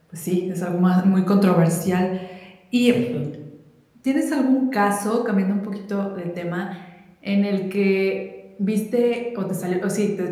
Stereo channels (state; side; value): identical; both; correlation 1.00